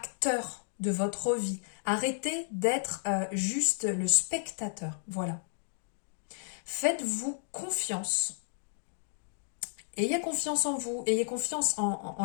de votre vie. Arrêtez d'être juste le spectateur. Voilà. Faites-vous confiance. Ayez confiance en vous. Ayez confiance en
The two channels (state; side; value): silent; right; digital silence